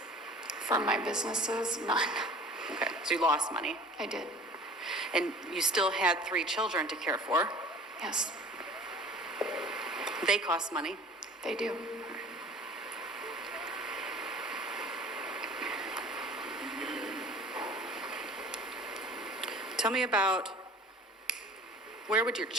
From my businesses, none. Okay, so you lost money. I did, And you still had 3 children to care for. yes, They cost money. they do. Tell me about, where would your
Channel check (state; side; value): normal; both; correlation 0.45